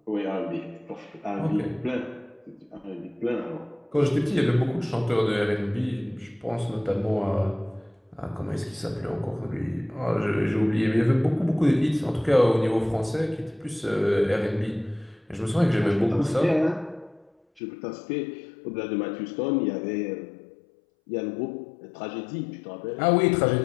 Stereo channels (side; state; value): right; drops out; at 17.6 s